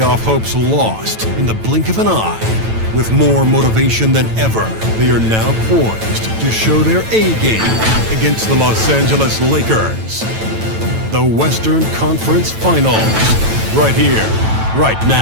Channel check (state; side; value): late; left; 9.0 ms